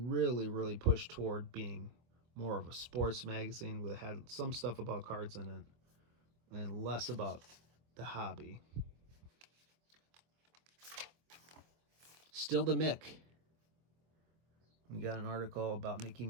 push toward being more of a sports magazine. It had some stuff about cards in it and less about the hobby. Still the Mick. We got an article about Mickey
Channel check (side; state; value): left; late; 25 ms